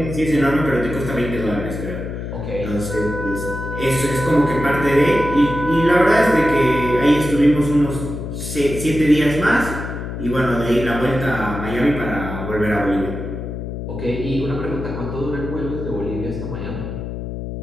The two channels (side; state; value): left; noise; hum, 6 dB below the sound